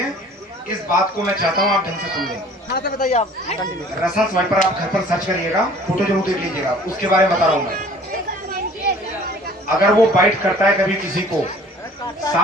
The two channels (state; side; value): normal; both; correlation 0.50